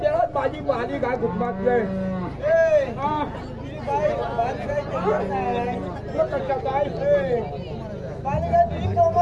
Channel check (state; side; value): identical; both; correlation 1.00